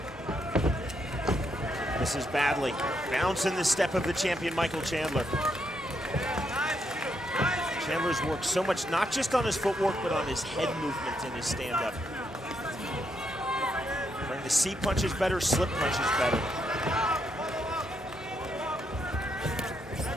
Misses badly. Bounce in the step of the champion, Michael Chandler. Chandler's worked so much, not just on his footwork, but on his head movement in his stand-up. Bring the C punches better, slip punches better.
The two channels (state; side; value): normal; both; correlation 0.78